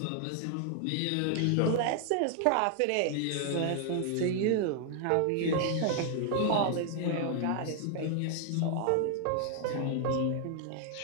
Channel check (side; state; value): both; different; correlation 0.00